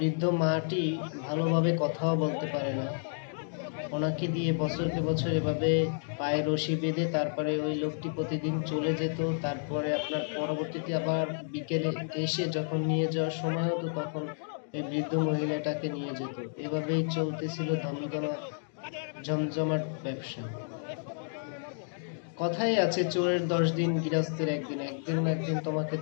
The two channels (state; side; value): silent; right; digital silence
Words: মাটি ভালোভাবে কথাও বলতে পারে না। ওনাকে দিয়ে বছরকে বছর এভাবে পায়ে রশি বেঁধে তারপরে ওই লোকটি প্রতিদিন চলে যেত। তারপরে আপনার পরবর্তীতে আবার বিকেলে এসে যখন নিয়ে যাওয়ার সময় হতো তখন এই বৃদ্ধ মহিলাটাকে নিয়ে যেত। এভাবেই চলতেছিল জমজমাট ব্যবসা। কথাই আছে, চোরের 10 দিন গৃহস্থের একদিন, একদিন না একদিন তোমাকে